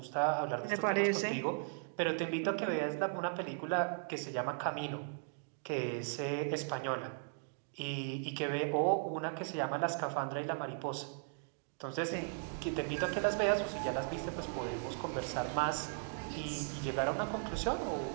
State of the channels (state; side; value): silent; left; digital silence